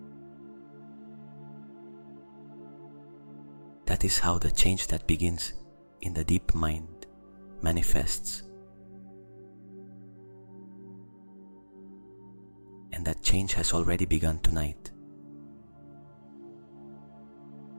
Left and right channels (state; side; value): inverted; both; correlation -1.00